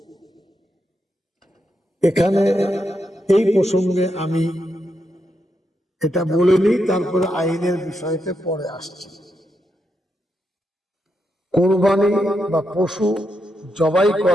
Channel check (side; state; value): both; normal; correlation 0.83